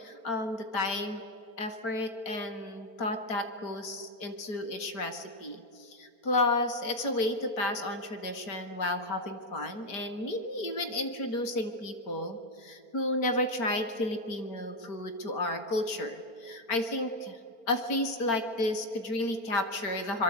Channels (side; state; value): right; late; 4.4 ms